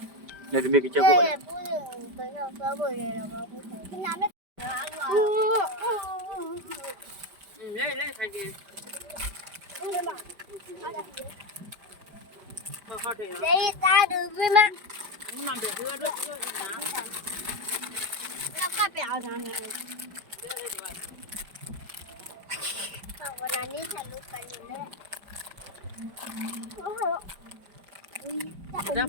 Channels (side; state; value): left; late; 5.1 ms